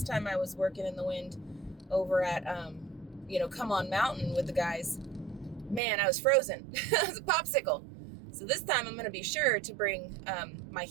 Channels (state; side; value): drops out; left; at 5.8 s